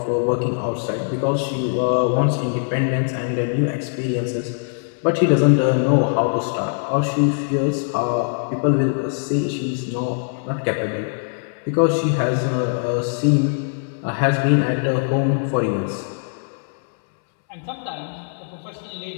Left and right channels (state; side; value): silent; right; 64 dB below the other